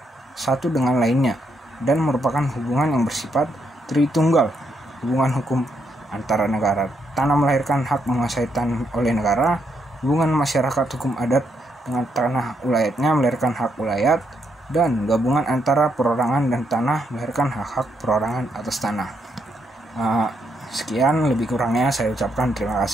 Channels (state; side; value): normal; both; correlation 0.77